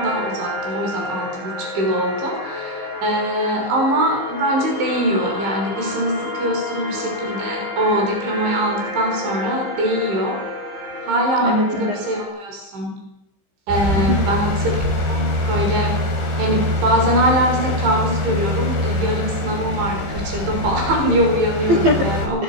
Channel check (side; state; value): left; late; 15 ms